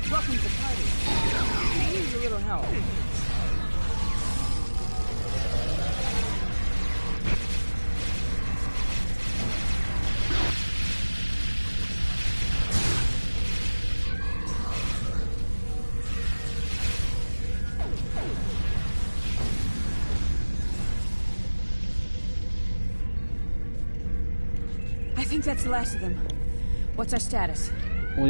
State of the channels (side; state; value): both; inverted; correlation -1.00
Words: Welcome to the party. I need a little help. I think that's the last of them. What's our status? All